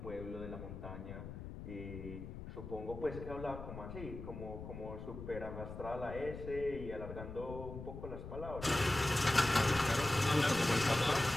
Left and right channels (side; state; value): left; noise; rumble, 10 dB below the sound